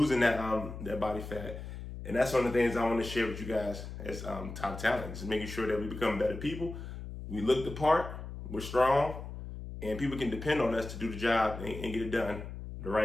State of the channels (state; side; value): noise; left; hum, 9 dB below the sound